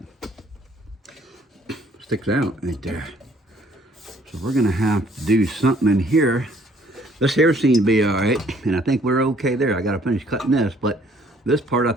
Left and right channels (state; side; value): normal; both; correlation 0.61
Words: Sticks out right there. So we're gonna have to do something in here. This here seems to be all right, and I think we're okay there. I gotta finish cutting this, but this part, I